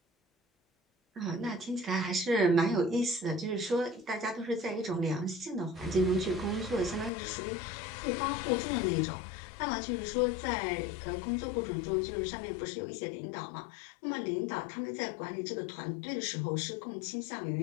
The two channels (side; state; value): right; drops out; at 7.1 s